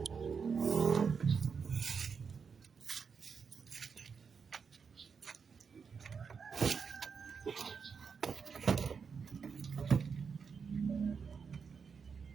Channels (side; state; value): left; quieter; 5.9 dB